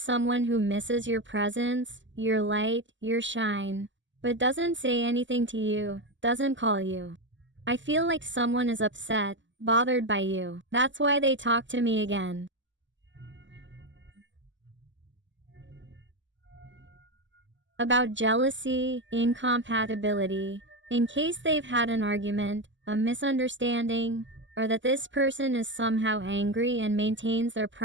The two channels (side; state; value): left; late; 0.54 ms